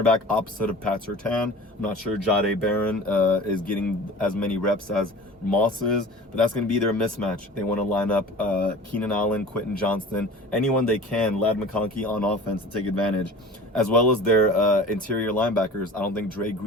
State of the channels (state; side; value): normal; both; correlation 0.40